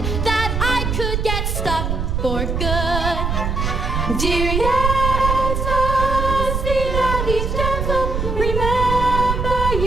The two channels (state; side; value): noise; right; rumble, 1 dB below the sound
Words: that I could get stuck for good. Dear Yetta, see that he's gentle. Remember